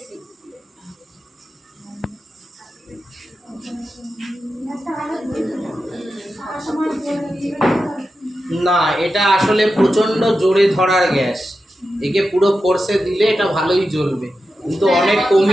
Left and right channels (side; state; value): both; normal; correlation 0.90